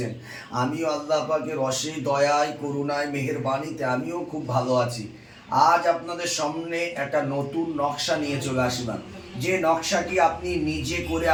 আমিও আল্লাহ পাকের অশেষ দয়ায়, করুণায়, মেহেরবানিতে আমিও খুব ভালো আছি। আজ আপনাদের সামনে একটা নতুন নকশা নিয়ে চলে আসলাম, যে নকশাটি আপনি নিজে করে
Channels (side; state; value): both; identical; correlation 1.00